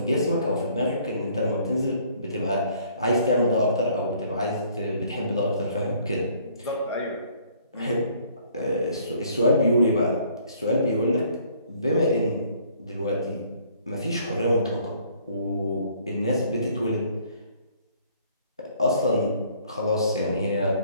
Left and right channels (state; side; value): inverted; both; correlation -0.60